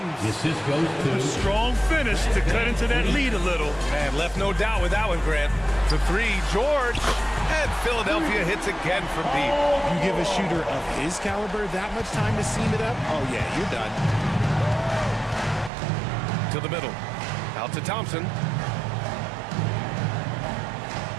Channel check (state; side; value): drops out; left; at 15.7 s